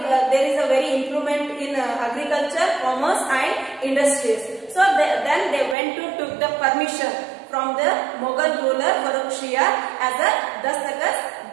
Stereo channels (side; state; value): left; drops out; at 5.8 s